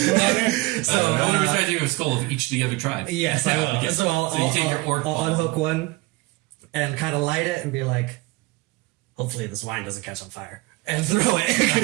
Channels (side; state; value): left; quieter; 22.6 dB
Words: So, I want to be trying to a skull of each of the other tribes. Yes, I will. Okay. So I'll you take your orc I'll ball. unhook one and kind of light it and be like, hopefully this wine doesn't catch on fire, and throw